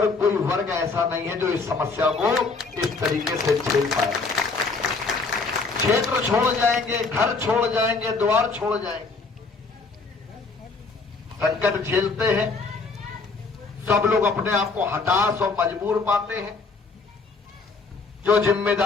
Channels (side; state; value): right; quieter; 4.1 dB